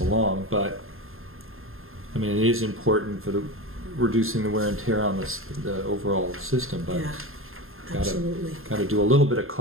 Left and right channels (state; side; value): late; left; 0.61 ms